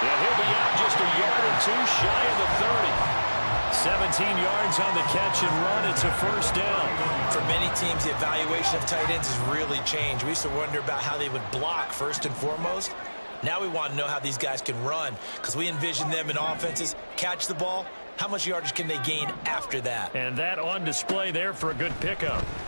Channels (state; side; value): inverted; both; correlation -1.00